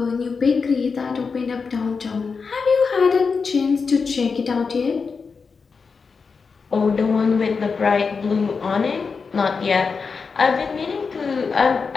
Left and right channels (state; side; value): quieter; right; 5.1 dB